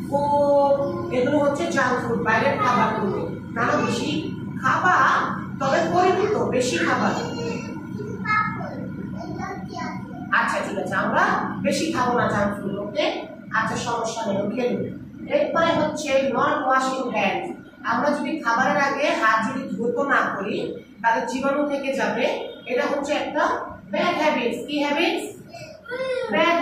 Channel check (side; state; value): both; identical; correlation 1.00